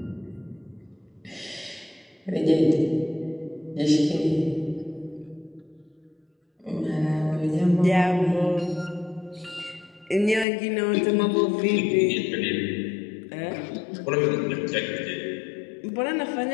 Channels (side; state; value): right; drops out; at 10.5 s